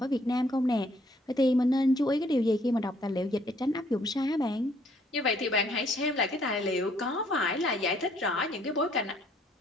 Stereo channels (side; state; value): both; normal; correlation 0.65